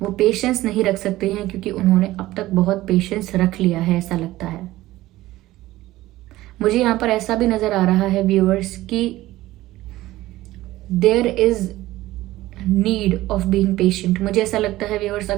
वो पेशेंस नहीं रख सकते हैं क्योंकि उन्होंने अब तक बहुत पेशेंस रख लिया है, ऐसा लगता है मुझे। यहाँ पर ऐसा भी नजर आ रहा है व्यूअर्स कि there is need of being patient. मुझे ऐसा लगता है व्यूअर्स,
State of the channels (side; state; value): left; quieter; 16.6 dB